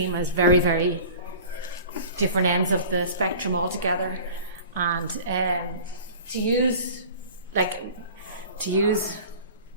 as very, very different ends of the spectrum altogether. And to use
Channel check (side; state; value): both; inverted; correlation -0.41